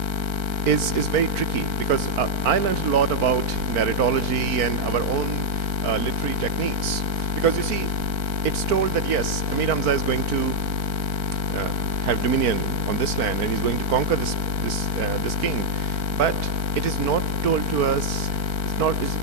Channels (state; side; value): late; left; 4.5 ms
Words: is very tricky, because I learned a lot about narratology and our own literary techniques. Because you see, it's told that yes, Amir Hamza is going to have dominion on this land, and he's going to conquer this king. But it is not told to us.